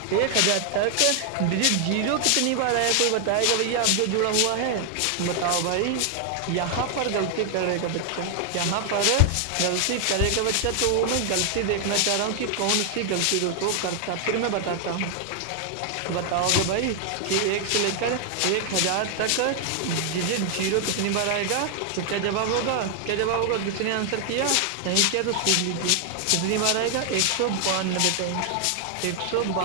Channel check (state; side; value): different; both; correlation 0.00